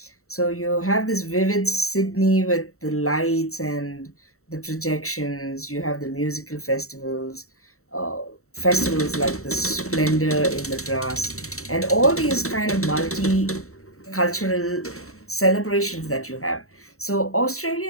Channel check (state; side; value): late; right; 0.64 ms